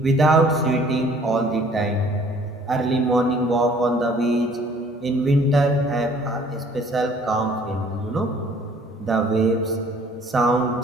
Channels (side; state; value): both; normal; correlation 0.56